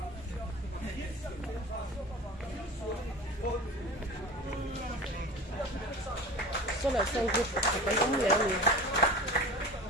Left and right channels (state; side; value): normal; both; correlation 0.35